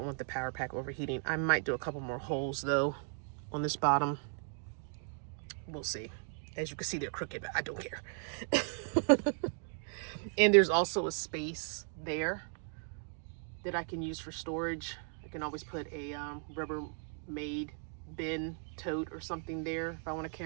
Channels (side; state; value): left; silent; 54 dB below the other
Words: want the power pack overheating. I might do a couple more holes though on this bottom. We'll see. As you can see, they're crooked, but I don't care. And there's also a space there that I can use for storage. I can always put a Rubbermaid bin tote or something there if I want to